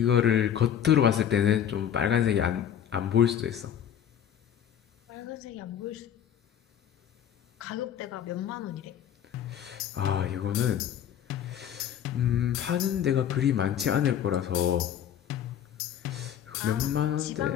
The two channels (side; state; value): right; quieter; 9.6 dB